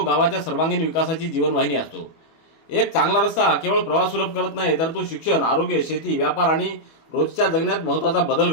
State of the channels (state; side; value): late; right; 25 ms